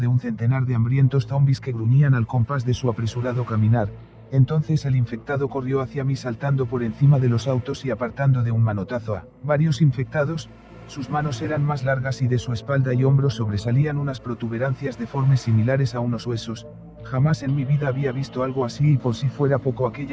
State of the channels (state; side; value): identical; both; correlation 1.00